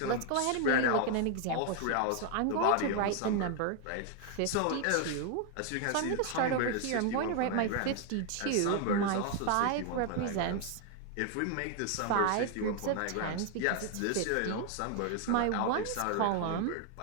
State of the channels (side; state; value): both; different; correlation 0.00